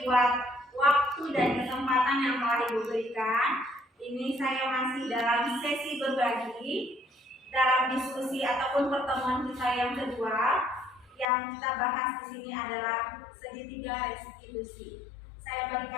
buat waktu dan kesempatan yang telah Ibu berikan. Ini saya masih dalam sesi berbagi dalam diskusi ataupun pertemuan kita yang kedua. Yang kita bahas di sini adalah segitiga restitusi. Saya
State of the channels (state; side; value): drops out; right; at 11.2 s